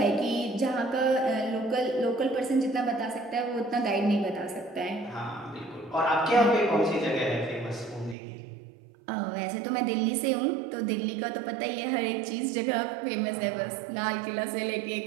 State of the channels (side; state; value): left; drops out; at 8.2 s